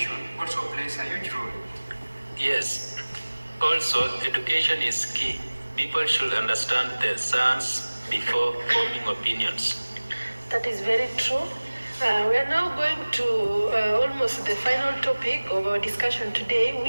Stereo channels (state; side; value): inverted; both; correlation -1.00